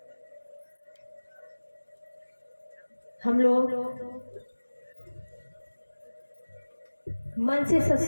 हम लोग मन से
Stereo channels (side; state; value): both; inverted; correlation -1.00